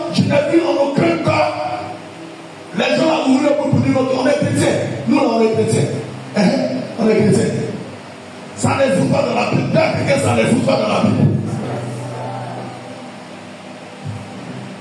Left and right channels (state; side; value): identical; both; correlation 1.00